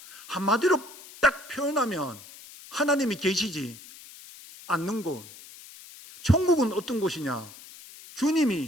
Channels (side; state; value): left; noise; hiss, 18 dB below the sound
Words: 한마디로 딱 표현하면 하나님이 계시지 않는 곳. 천국은 어떤 곳이냐?